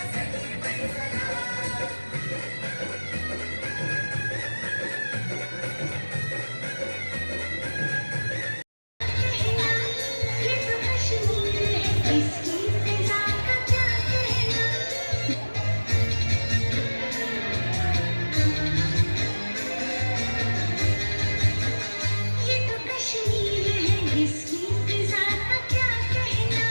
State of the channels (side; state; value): both; inverted; correlation -1.00